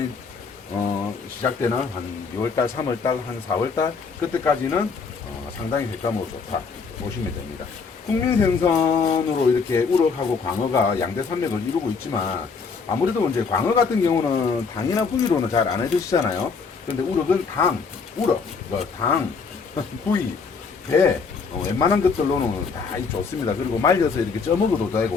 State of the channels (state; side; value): quieter; right; 5.1 dB